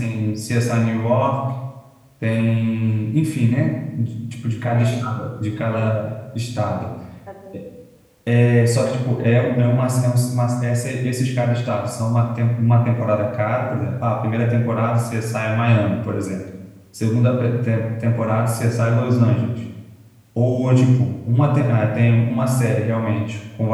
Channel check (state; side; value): identical; both; correlation 1.00